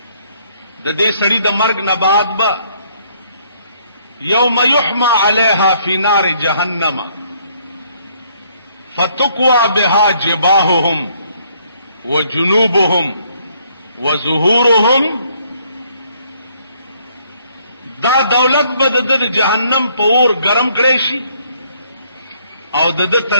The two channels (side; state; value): both; inverted; correlation -0.66